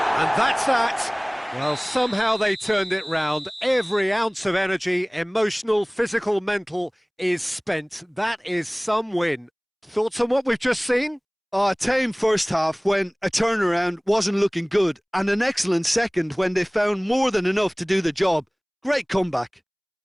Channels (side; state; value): both; identical; correlation 1.00